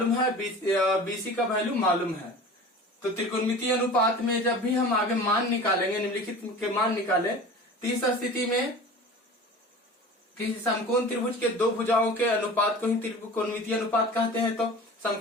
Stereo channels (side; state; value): both; normal; correlation 0.38